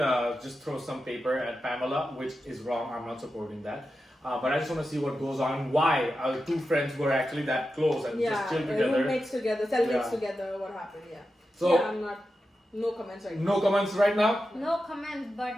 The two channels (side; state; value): both; normal; correlation 0.90